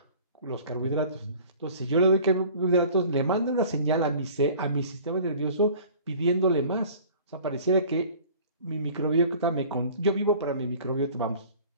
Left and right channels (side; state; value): both; inverted; correlation -0.46